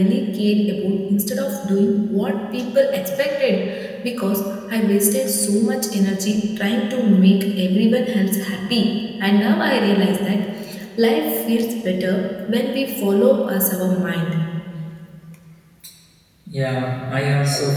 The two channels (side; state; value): both; identical; correlation 1.00